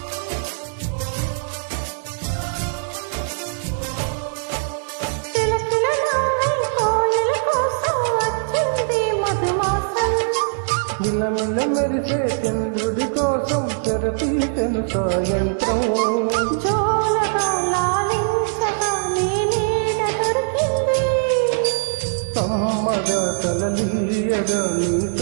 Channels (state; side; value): silent; left; digital silence